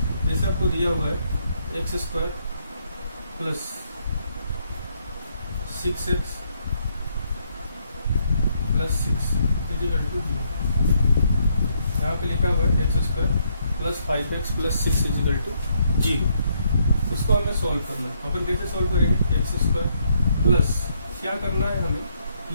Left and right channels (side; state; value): both; inverted; correlation -0.73